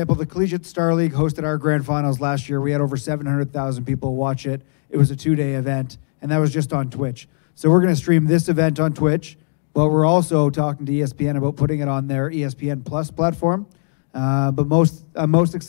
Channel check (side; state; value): right; silent; digital silence